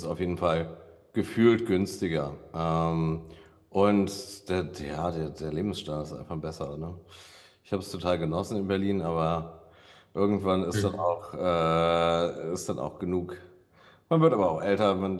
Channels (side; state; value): both; identical; correlation 1.00